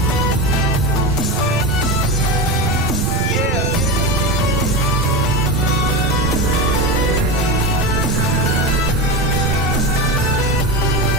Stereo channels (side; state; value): both; normal; correlation 0.21